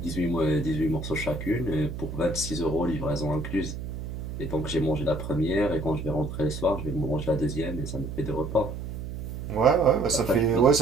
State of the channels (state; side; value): noise; right; hum, 7 dB below the sound